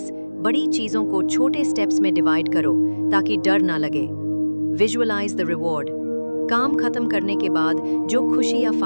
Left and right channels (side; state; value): both; inverted; correlation -1.00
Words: बड़ी चीजों को छोटे स्टेप्स में डिवाइड करो ताकि डर ना लगे। Visualise the reward. काम खत्म करने के बाद जो खुशी या